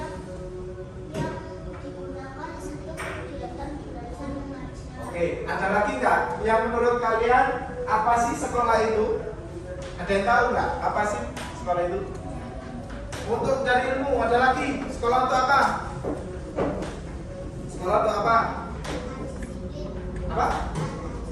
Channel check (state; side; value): identical; both; correlation 1.00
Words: digunakan untuk kegiatan belajar mengajar. Oke, ada lagi nggak yang menurut kalian apa sih sekolah itu? Ada yang tahu nggak apa sih sekolah itu? Untuk cari ilmu. Ada lagi, sekolah untuk apa? Sekolah untuk apa? Apa?